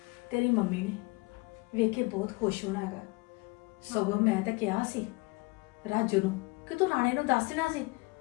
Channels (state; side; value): quieter; right; 25.9 dB